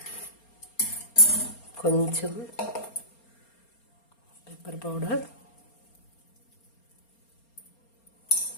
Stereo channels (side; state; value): right; late; 4.3 ms